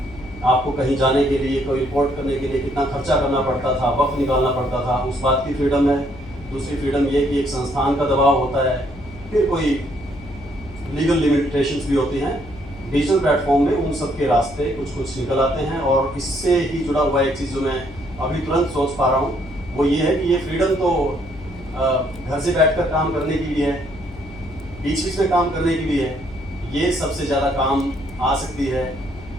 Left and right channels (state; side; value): noise; left; hum, 18 dB below the sound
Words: आपको कहीं जाने के लिए, कोई रिपोर्ट करने के लिए कितना खर्चा करना पड़ता था, वक्त निकालना पड़ता था, उस बात की फ्रीडम है। दूसरी फ्रीडम ये कि एक संस्थान का दबाव होता है, फिर कोई लीगल लिमिटेशंस भी होती हैं। डिजिटल प्लेटफॉर्म में उन सब के रास्ते कुछ कुछ निकल आते हैं। और इससे ही जुड़ा हुआ एक चीज़ जो मैं अभी तुरंत सोच पा रहा हूँ वो ये है कि ये फ्रीडम तो घर से बैठकर काम करने की भी है, बीच बीच में काम करने की भी है। ये सबसे ज़्यादा काम आ सकती है